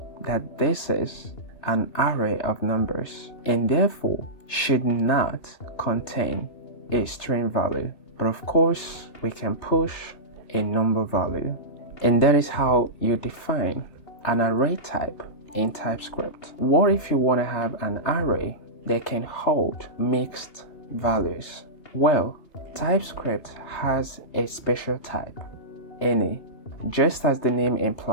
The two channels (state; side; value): late; right; 3.3 ms